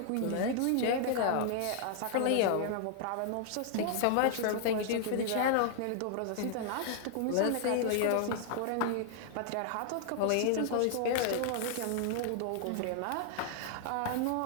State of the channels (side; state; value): both; different; correlation 0.00